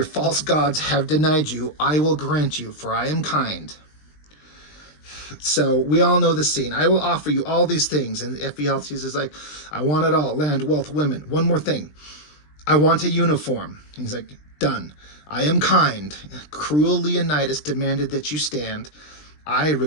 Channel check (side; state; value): right; late; 20 ms